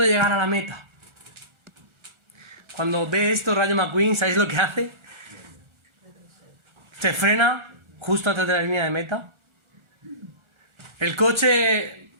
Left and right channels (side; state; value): left; late; 1.4 ms